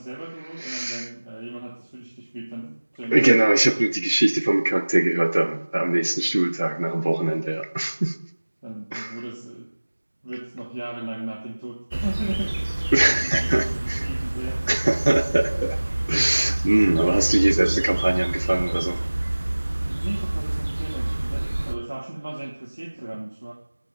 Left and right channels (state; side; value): inverted; both; correlation -1.00